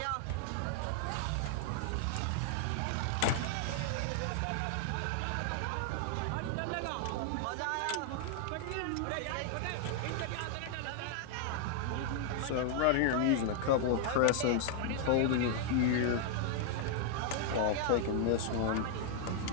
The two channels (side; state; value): both; different; correlation 0.00